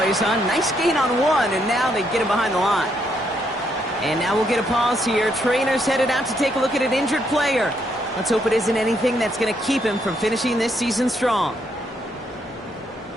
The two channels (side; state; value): both; normal; correlation 0.75